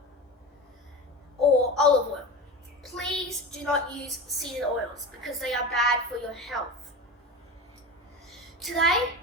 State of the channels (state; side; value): normal; both; correlation 0.27